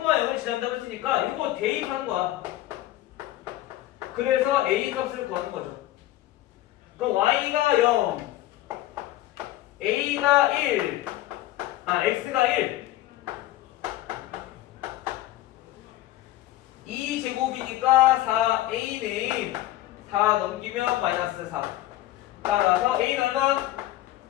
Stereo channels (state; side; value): quieter; right; 15.2 dB